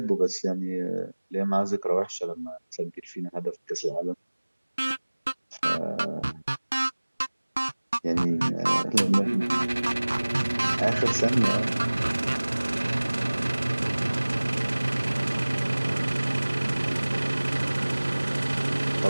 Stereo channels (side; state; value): both; inverted; correlation -1.00